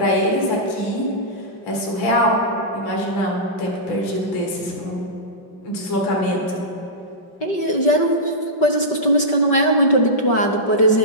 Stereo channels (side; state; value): right; late; 5.3 ms